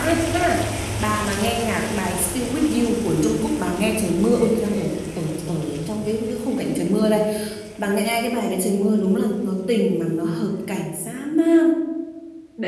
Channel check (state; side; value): identical; both; correlation 1.00